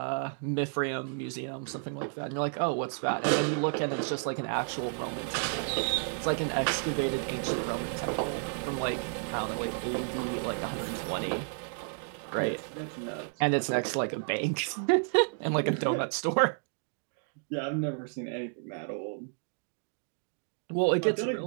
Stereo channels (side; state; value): left; silent; 57 dB below the other